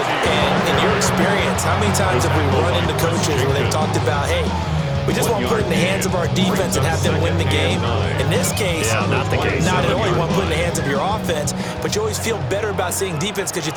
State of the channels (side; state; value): both; identical; correlation 1.00